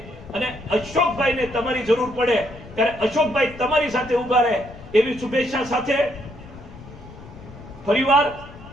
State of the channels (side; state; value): left; noise; rumble, 17 dB below the sound